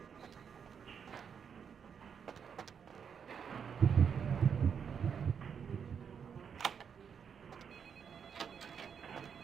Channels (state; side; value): quieter; left; 7.1 dB